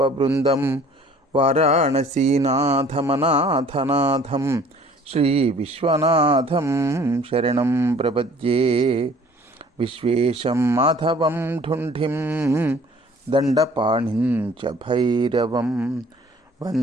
వారాణసీనాథమనాథనాథం శ్రీ విశ్వనాథం శరణం ప్రపద్యే. విశ్వేశం మాధవం ఢుంఢిం దండపాణిం చ భైరవం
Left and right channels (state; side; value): normal; both; correlation 0.53